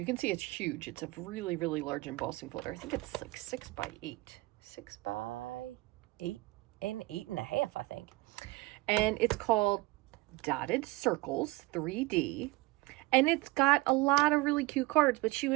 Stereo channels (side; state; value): left; quieter; 21.3 dB